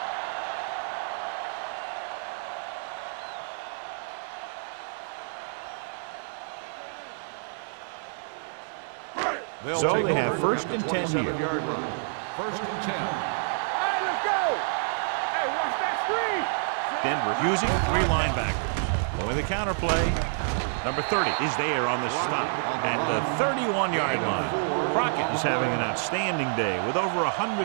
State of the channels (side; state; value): left; silent; digital silence